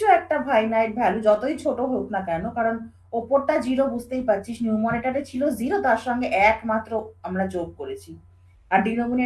একটা ফাইনাইট ভ্যালু যতই ছোট হোক না কেন, কারণ ওপরটা জিরো বুঝতেই পারছিস, নিউমারেটারে ছিল জিরো, তার সঙ্গে এক মাত্র আমরা যোগ করেছি, আর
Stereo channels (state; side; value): identical; both; correlation 1.00